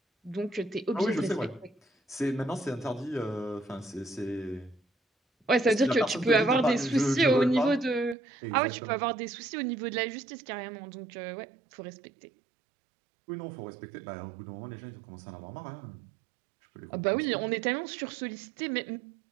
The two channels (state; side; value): drops out; left; at 8.2 s